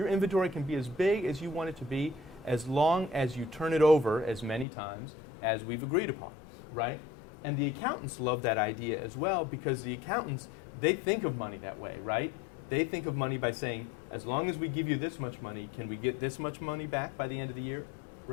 inventory can be as big as you want it to be as long as you turn it over as many times as we've agreed upon, right? And the accountants love that idea as well because the accountants, they think of money that way, right? They think of money by saying, as long as we give you this much money, can we get this much money back by the end of the year,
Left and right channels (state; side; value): drops out; right; at 4.7 s